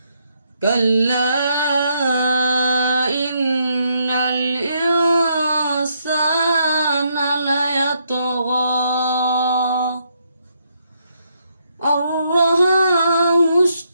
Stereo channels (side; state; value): both; inverted; correlation -0.75